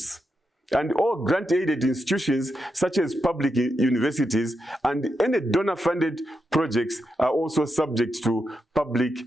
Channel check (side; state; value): both; normal; correlation 0.85